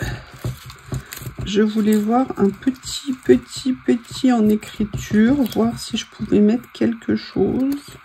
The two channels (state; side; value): identical; both; correlation 1.00